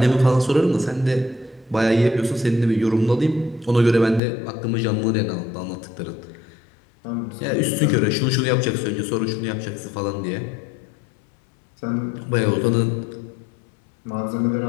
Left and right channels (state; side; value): drops out; right; at 4.2 s